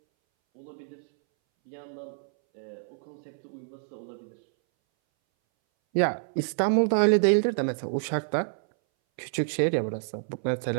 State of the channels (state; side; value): silent; left; 59 dB below the other